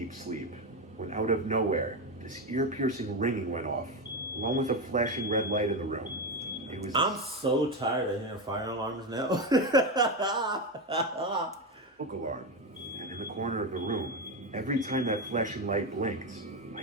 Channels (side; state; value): both; normal; correlation 0.13